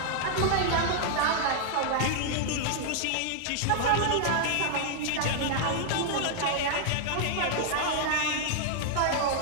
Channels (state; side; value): different; both; correlation 0.00